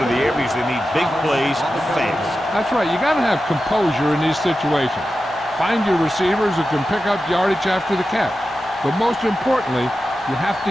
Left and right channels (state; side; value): normal; both; correlation 0.92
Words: the air because they need big plays fast. That's right. You got to have composure in these situations. Find your receivers who can pick up yardage after the catch. But most importantly, you have